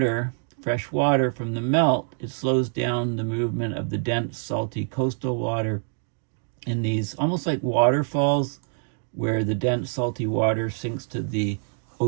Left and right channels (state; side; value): silent; left; digital silence